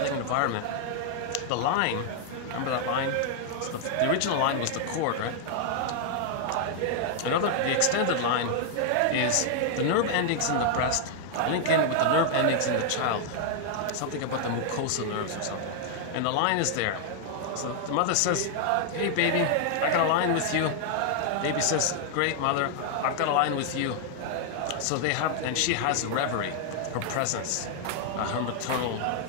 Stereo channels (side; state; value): both; different; correlation 0.00